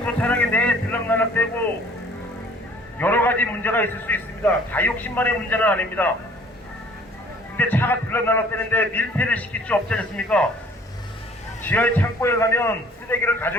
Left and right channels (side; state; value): both; normal; correlation 0.54